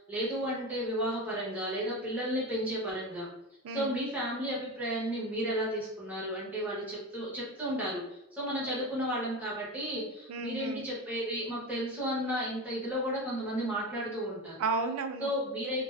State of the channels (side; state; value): both; normal; correlation 0.24